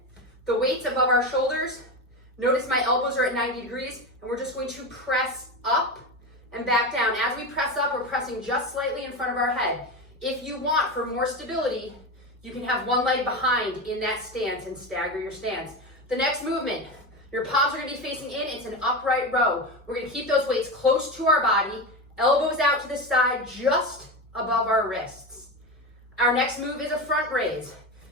the weights above our shoulders. Notice my elbows are at 90 degrees, and we're just going to press up and back down. As we press up, we're pressing just slightly in front of our head. If you want, for more stability, you can have 1 leg behind in that stance and stagger your stance. The next movement, your palms are gonna be facing in. It's an upright row. We're gonna keep those weights close to our body, elbows out to the side, just above our wrists. Our next move is a front raise.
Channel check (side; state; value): both; normal; correlation 0.20